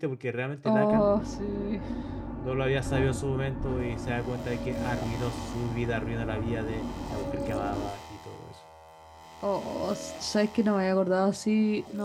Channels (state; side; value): identical; both; correlation 1.00